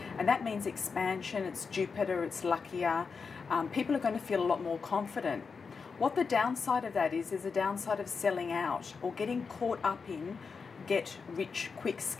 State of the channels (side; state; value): right; quieter; 5.2 dB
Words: And that means expansion, it's Jupiter, it's luckier. People are going to feel a lot more confident. What the downside of that is a downside of selling out or getting caught up in get rich quick